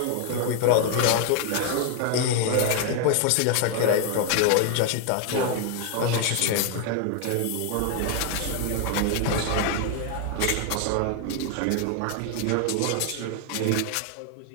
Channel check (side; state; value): both; different; correlation 0.00